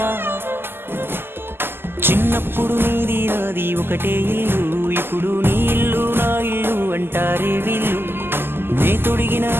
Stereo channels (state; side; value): late; left; 0.11 ms